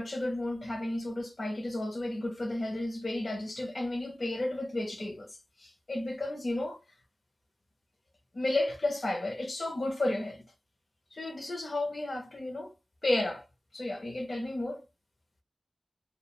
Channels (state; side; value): normal; both; correlation 0.96